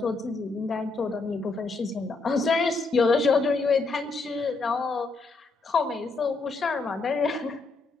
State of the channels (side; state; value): right; quieter; 3.8 dB